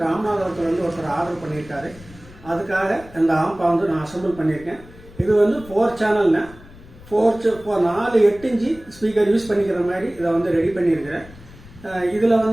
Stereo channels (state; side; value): noise; left; rumble, 20 dB below the sound